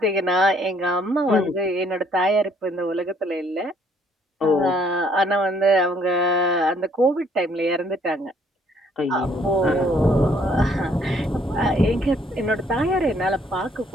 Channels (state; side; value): normal; both; correlation 0.64